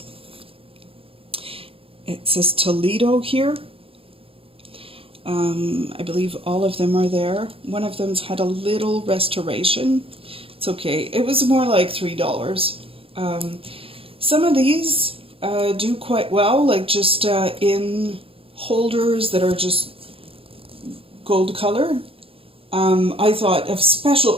It says Toledo here. I believe all of them are there. One of them's had a little restoration. It's okay. It was more like $3. Some of these do quite well, like just in holders that are just gold color. I thought of special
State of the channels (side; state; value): left; late; 0.27 ms